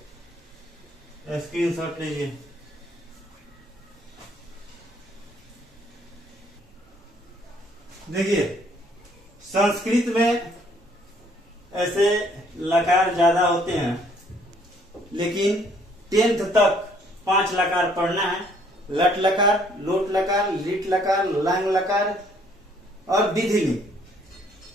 स्क्रीनशॉट लीजिए। देखिए संस्कृत में ऐसे लकार ज्यादा होते हैं, लेकिन 10th तक 5 लकार पढ़ना है। लट लकार, लोट लकार, लिट लकार, लंग लकार और विधिलिंग।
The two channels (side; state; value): both; normal; correlation 0.63